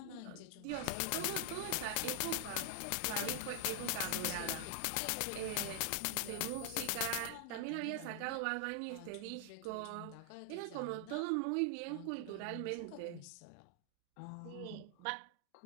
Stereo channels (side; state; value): both; different; correlation 0.00